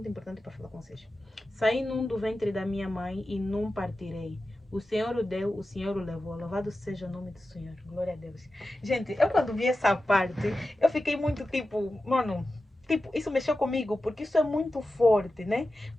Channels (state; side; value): normal; both; correlation 0.93